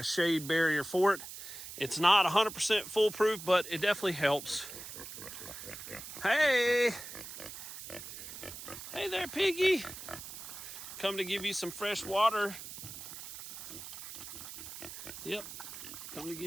shade barrier for it. It's not 100% foolproof, but it definitely helps. Hey! Hey there, piggy. Come to give you some fresh water. Yep, come to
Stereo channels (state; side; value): noise; right; hiss, 11 dB below the sound